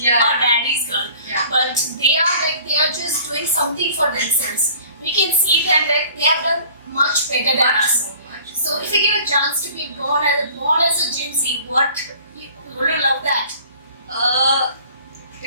daddy's girl. Yeah. But they are just doing something for themselves. We can see that they have done much better than us. So much. So if we they give a chance to be born as a Gen Z, would you love that?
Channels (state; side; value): inverted; both; correlation -0.49